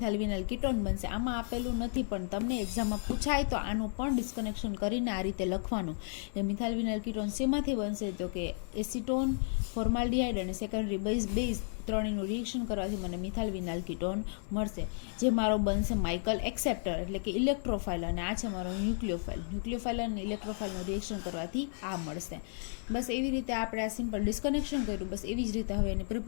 વિનાઇલ કીટોન બનશે. આમાં આપેલું નથી પણ તમને એક્ઝામમાં પૂછાય તો આનું પણ ડિસ્કનેક્શન કરીને આ રીતે લખવાનું. એ મિથાઇલ વિનાઇલ કીટોન શેમાંથી બનશે, તો કે એસિટોન, ફોર્માલ્ડિહાઇડ અને સેકન્ડરી બેઝ ત્રણેયનું રિએક્શન કરવાથી મને મિથાઇલ વિનાઇલ કીટોન મળશે, જે મારો બનશે માઇકલ એક્સેપ્ટર એટલે કે ઇલેક્ટ્રોફાઇલ. અને આ છે મારો ન્યુક્લિયોફાઇલ. ન્યુક્લિયોફાઇલ અને ઇલેક્ટ્રોફાઇલનું રિએક્શન કરવાથી આ મળશે. બસ એવી રીતે આપણે આ સિમ્પલ ડિસ્કનેક્શન કર્યું. બસ એવી જ રીતે હવે એની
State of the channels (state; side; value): silent; right; digital silence